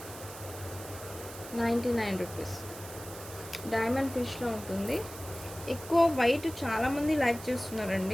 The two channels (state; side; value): noise; right; hiss, 14 dB below the sound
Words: ₹99. డైమండ్ ఫిష్లో ఉంటుంది. ఎక్కువ వైట్ చాలామంది లైక్